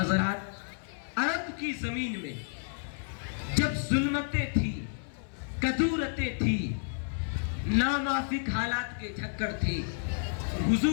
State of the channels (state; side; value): silent; right; 57 dB below the other